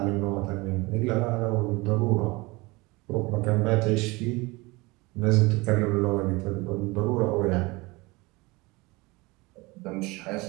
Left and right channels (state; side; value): quieter; left; 23.7 dB